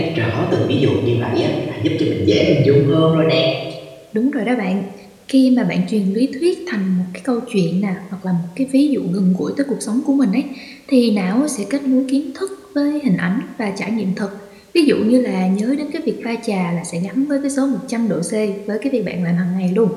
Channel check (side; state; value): both; identical; correlation 1.00